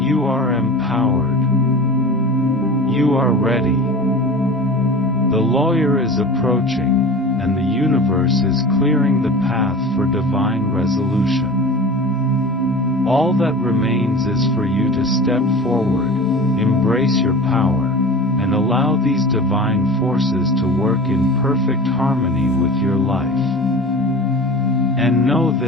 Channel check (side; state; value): both; normal; correlation 0.34